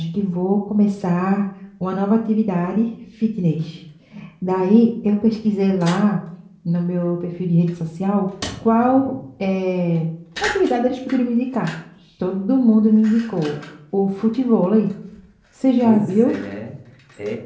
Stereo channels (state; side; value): identical; both; correlation 1.00